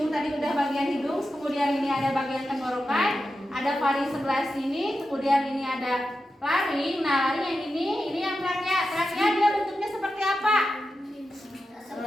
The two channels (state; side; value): normal; both; correlation 0.90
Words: tadi udah bagian hidung, kemudian ini ada bagian tenggorokan, ada faring sebelah sini, kemudian ini ada laring. Nah, laring yang ini yang trakea. Trakea dia bentuknya seperti apa?